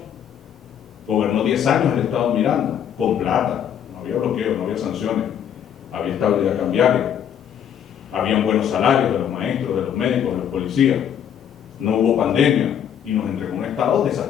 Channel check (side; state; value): right; quieter; 9.1 dB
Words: Gobernó 10 años el Estado Miranda, con plata, no había bloqueo, no había sanciones, había estabilidad cambiaria. Habían buenos salarios de los maestros, de los médicos, de los policías. No hubo pandemia y nos entregó un estado